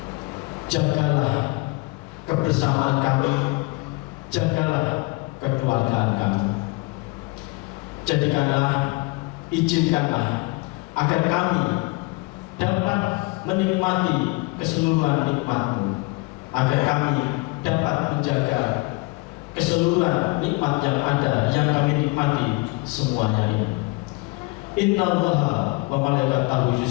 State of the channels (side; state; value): right; quieter; 26.0 dB